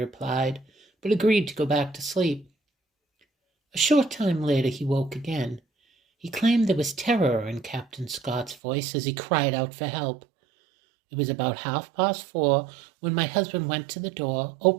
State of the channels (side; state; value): left; drops out; at 8.6 s